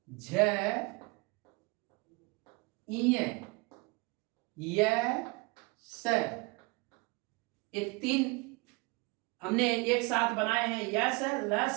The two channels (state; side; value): quieter; left; 26.9 dB